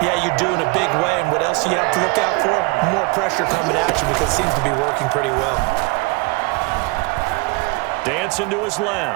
Yeah, you do in a big way. And what else do you have to look out for? More pressure coming at you because it seems to be working pretty well. Dancing to his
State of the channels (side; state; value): left; quieter; 25.8 dB